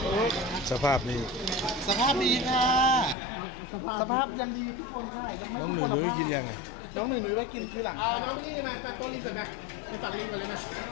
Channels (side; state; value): right; drops out; at 3.2 s